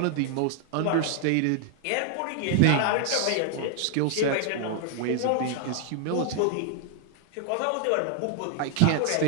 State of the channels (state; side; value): different; both; correlation 0.00